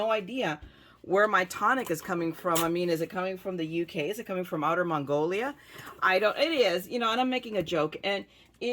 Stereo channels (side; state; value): both; identical; correlation 1.00